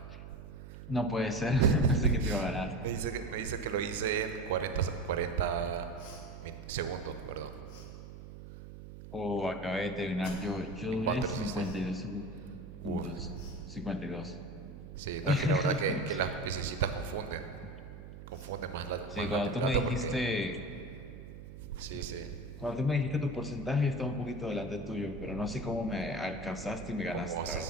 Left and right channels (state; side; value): noise; right; hum, 13 dB below the sound